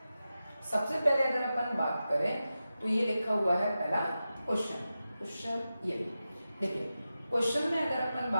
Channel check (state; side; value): inverted; both; correlation -0.92